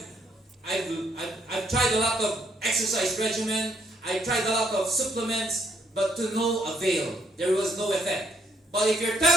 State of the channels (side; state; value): both; normal; correlation 0.71